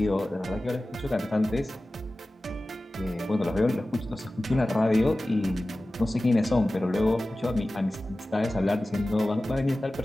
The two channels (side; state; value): both; normal; correlation 0.96